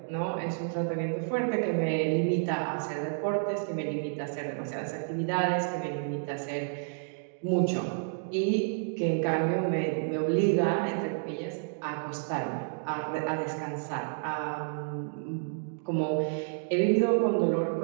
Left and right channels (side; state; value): left; silent; digital silence